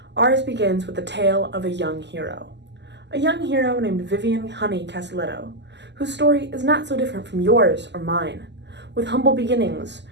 ours begins with the tale of a young hero. A young hero named Vivian Honey Castelletto, whose story is not so different from yours or mine, with humble beginnings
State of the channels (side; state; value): left; late; 0.51 ms